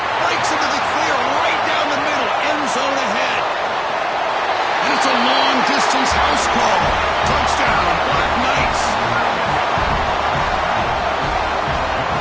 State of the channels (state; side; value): identical; both; correlation 1.00